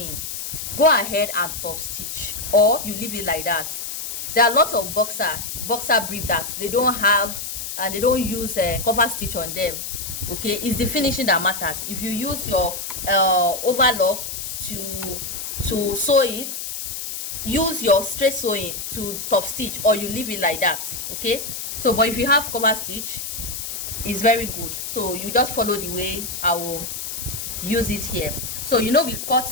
go ahead and top stitch, or you leave it like that. There are a lot of boxer brief that they don't have and they don't use cover stitch on them. Okay, it's the finishing that matters. If you use your overlock to sew it, use your straight sewing to top stitch, or you leave it like that. Okay, so but if you have cover stitch, it's very good. So you just follow the way I will use it here. So you know, we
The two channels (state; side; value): noise; left; hiss, 6 dB below the sound